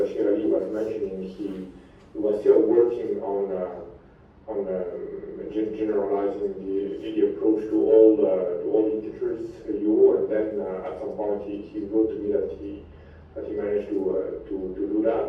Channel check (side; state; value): both; identical; correlation 1.00